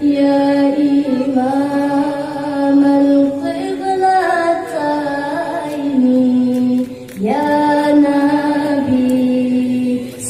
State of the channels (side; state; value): both; identical; correlation 1.00